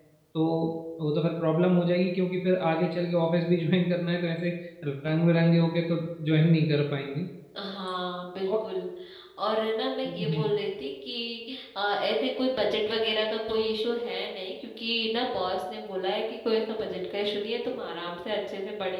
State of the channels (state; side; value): identical; both; correlation 1.00